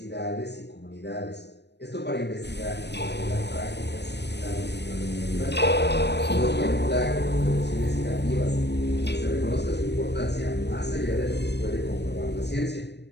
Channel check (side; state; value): right; late; 0.50 ms